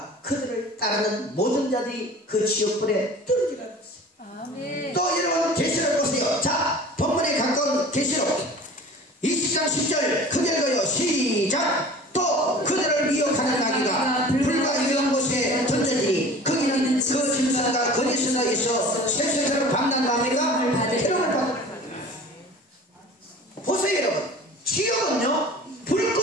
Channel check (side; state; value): both; normal; correlation 0.42